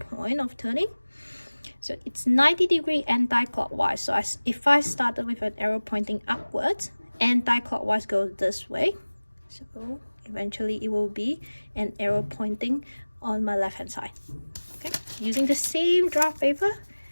of turning. So it's 90 degree anti-clockwise. So if I started with an arrow pointing upwards, anti-clockwise goes this way. So eventually it will be an arrow pointing on my left hand side. Okay, using the same draft paper,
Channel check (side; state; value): both; inverted; correlation -1.00